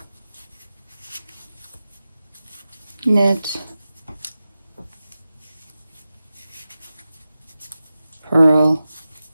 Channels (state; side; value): inverted; both; correlation -0.94